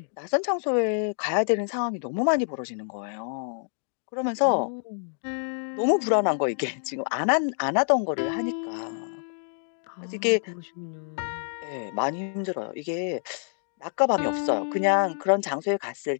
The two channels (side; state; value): right; silent; digital silence